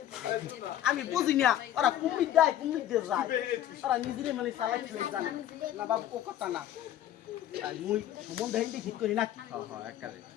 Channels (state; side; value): quieter; right; 12.0 dB